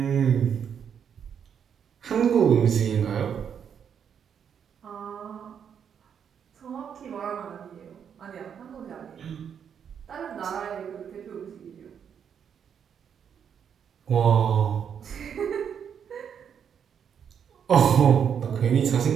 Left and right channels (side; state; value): left; quieter; 7.8 dB